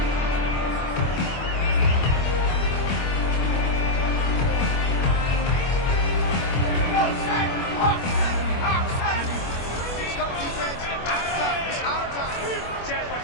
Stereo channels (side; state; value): right; late; 24 ms